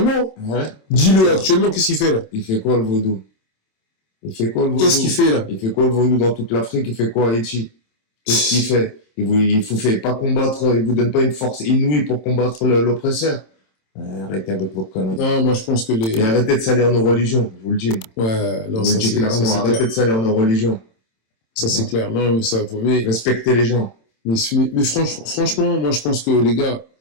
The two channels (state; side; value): late; right; 27 ms